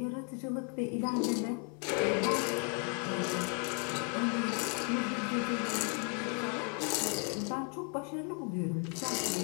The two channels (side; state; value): right; quieter; 37.2 dB